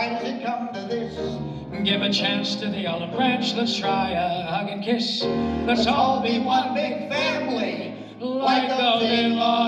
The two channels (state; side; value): identical; both; correlation 1.00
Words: does it come to this? Give a chance to the olive branch. Let's try a hug and kiss. Let's all be one big family, like those